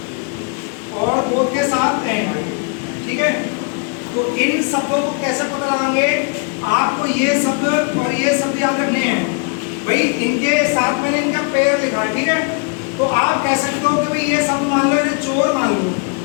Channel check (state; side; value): quieter; right; 37.6 dB